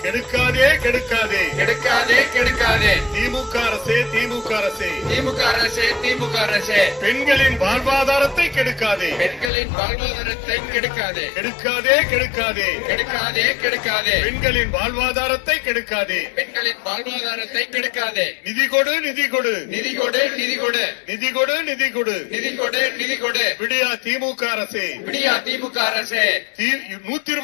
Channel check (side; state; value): right; drops out; at 9.5 s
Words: கெடுக்காதே கெடுக்காதே கெடுக்காதே கெடுக்காதே திமுக அரசே திமுக அரசே திமுக அரசே திமுக அரசே பெண்களின் வாழ்வாதாரத்தை கெடுக்காதே பெண்களின் வாழ்வாதாரத்தை கெடுக்காதே கெடுக்காதே கெடுக்காதே கெடுக்காதே கெடுக்காதே பெண்களின் வாழ்வாதாரத்தை கெடுக்காதே பெண்களின் வாழ்வாதாரத்தை கெடுக்காதே நிதி கொடு நிதி கொடு நிதி கொடு நிதி கொடு நிதி கொடு நிதி கொடு நிதி கொடு நிதி கொடு விடியா திமுக அரசே விடியா திமுக அரசே